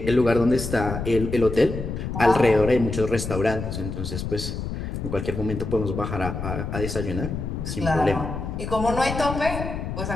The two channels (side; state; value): left; noise; rumble, 5 dB below the sound